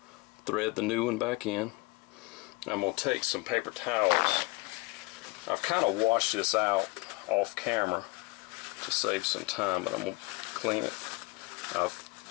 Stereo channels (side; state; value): right; quieter; 24.4 dB